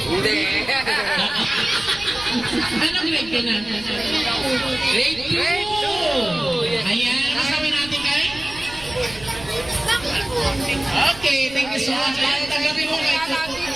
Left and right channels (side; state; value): right; noise; rumble, 17 dB below the sound